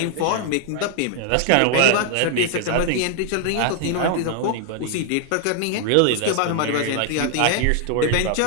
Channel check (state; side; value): different; both; correlation 0.00